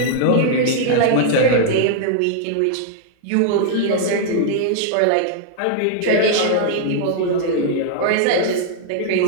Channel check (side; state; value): both; different; correlation -0.01